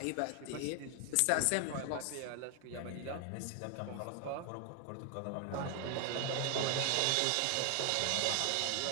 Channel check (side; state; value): both; different; correlation 0.00